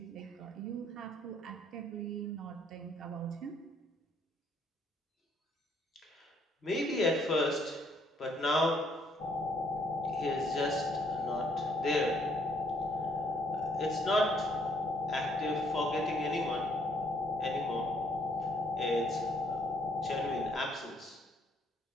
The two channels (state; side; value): normal; both; correlation 0.67